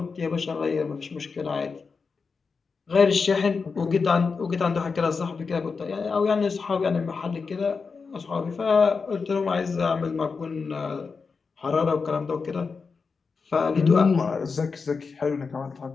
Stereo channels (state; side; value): quieter; right; 4.9 dB